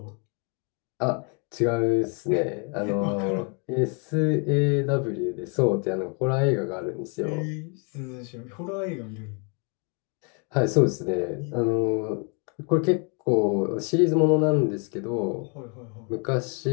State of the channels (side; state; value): right; quieter; 36.6 dB